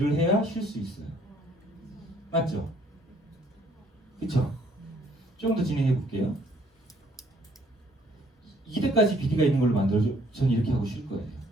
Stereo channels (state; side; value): normal; both; correlation 0.63